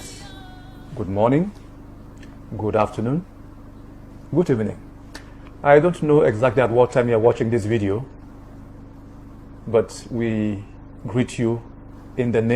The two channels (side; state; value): both; identical; correlation 1.00